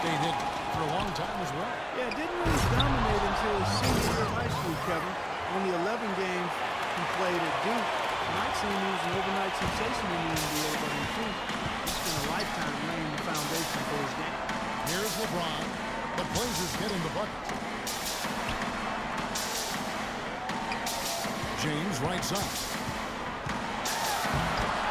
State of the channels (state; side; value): identical; both; correlation 1.00